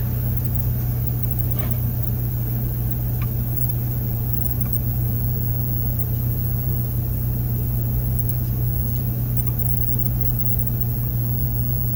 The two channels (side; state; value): both; identical; correlation 1.00